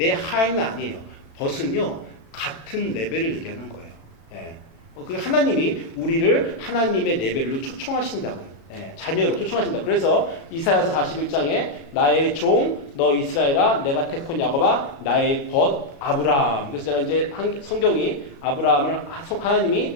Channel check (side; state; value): right; late; 36 ms